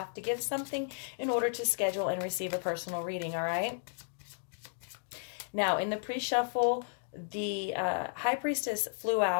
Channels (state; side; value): silent; right; digital silence